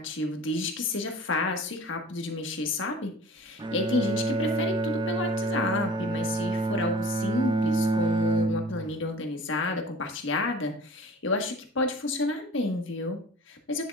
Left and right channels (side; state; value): both; normal; correlation 0.43